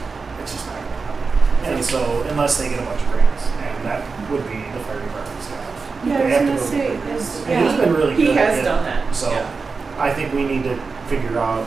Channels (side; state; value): left; quieter; 4.6 dB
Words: It's just not gonna happen. And so, unless they get a bunch of grants, and that would be the fire department's job. Yeah, I They was have to gonna go say, get grants. is- And he's been really He good at has it. done that, So, yeah. I think we need to figure out